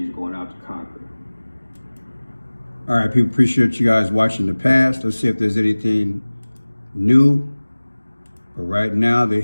going out to conquer. All right, people, appreciate you guys watching the past. Let's see if there's anything new. But right now they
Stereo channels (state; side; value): inverted; both; correlation -1.00